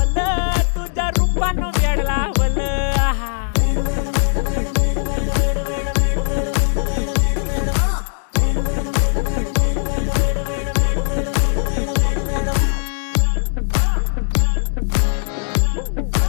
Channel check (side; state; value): right; silent; digital silence